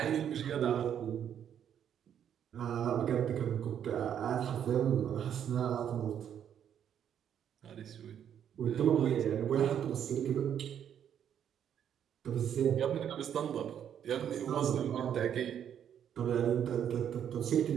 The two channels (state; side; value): quieter; left; 9.2 dB